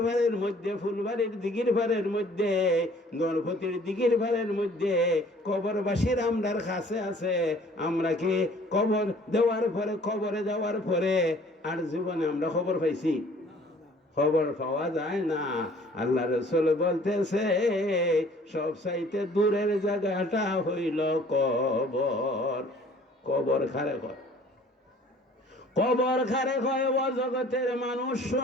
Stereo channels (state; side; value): normal; both; correlation 0.54